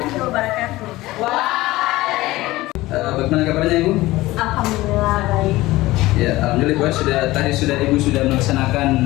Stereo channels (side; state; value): right; quieter; 18.3 dB